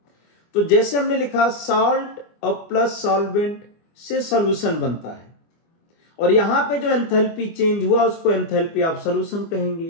तो जैसे हमने लिखा सॉल्ट और प्लस सॉल्वेंट से सॉल्यूशन बनता है, और यहां पे जो एंथैल्पी चेंज हुआ उसको एंथैल्पी ऑफ सॉल्यूशन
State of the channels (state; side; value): late; right; 25 ms